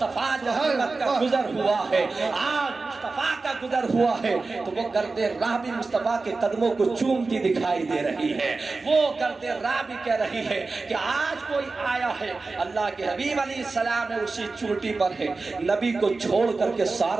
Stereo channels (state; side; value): quieter; left; 3.8 dB